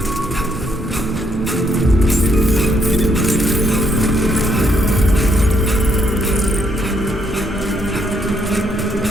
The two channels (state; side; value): normal; both; correlation 0.73